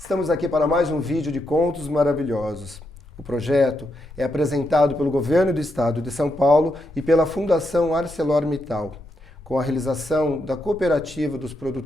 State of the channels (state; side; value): normal; both; correlation 0.82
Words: aqui para mais um vídeo de Contos Maravilhosos. O projeto é apresentado pelo Governo do Estado de São Paulo e pela Fundação ArcelorMittal, com a realização da Cooperativa dos